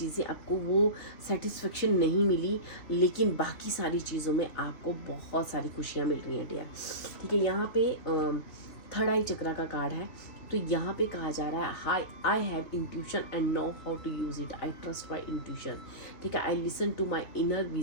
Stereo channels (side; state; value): right; late; 3.3 ms